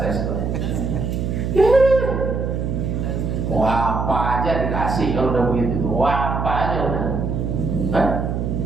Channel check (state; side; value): noise; right; hum, 2 dB below the sound